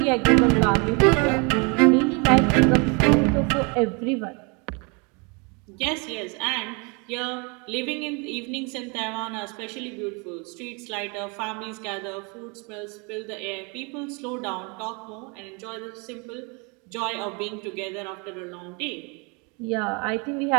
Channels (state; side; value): quieter; left; 31.9 dB